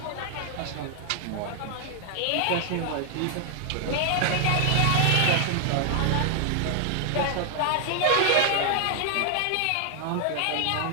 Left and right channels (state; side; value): different; both; correlation 0.00